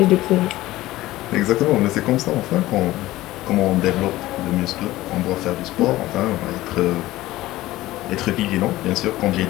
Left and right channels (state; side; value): quieter; right; 16.9 dB